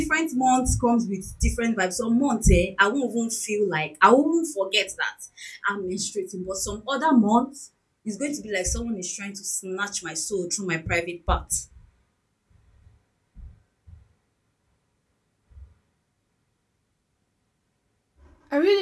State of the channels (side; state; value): both; identical; correlation 1.00